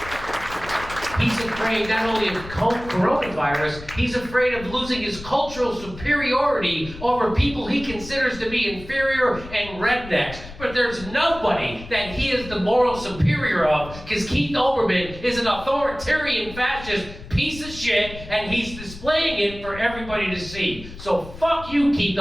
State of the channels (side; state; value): left; noise; rumble, 14 dB below the sound